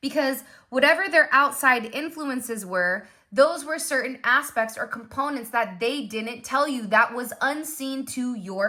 because whatever their outside influences were, those were certain aspects or components that they didn't tell you, that was unseen to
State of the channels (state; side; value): identical; both; correlation 1.00